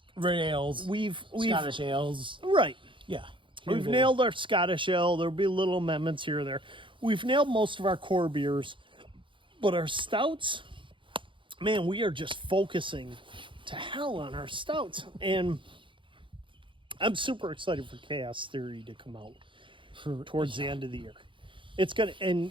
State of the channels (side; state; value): left; late; 0.24 ms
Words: Red ales. We've Scottish ales. Right. Yeah. We've nailed our Scottish ale. There'll be little amendments here or there. We've nailed most of our core beers, but our stouts, man, we are just focusing to hell on our stouts. And I'm super excited for Chaos Theory to come out towards the end of the year. It's gonna,